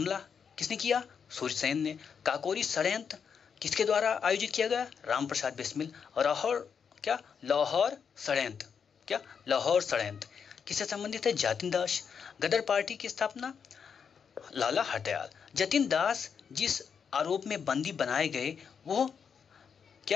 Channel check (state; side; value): quieter; right; 6.7 dB